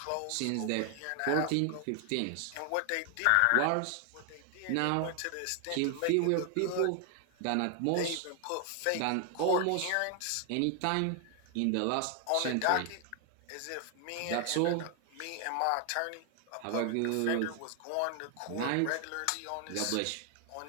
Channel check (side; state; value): both; different; correlation 0.00